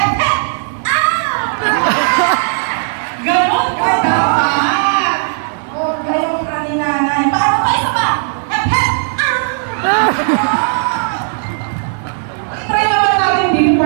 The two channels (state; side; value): silent; left; 70 dB below the other